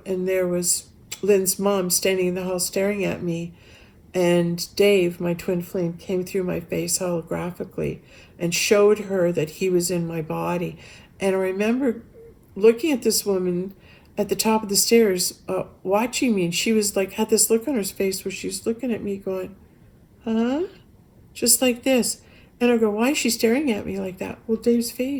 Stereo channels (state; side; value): identical; both; correlation 1.00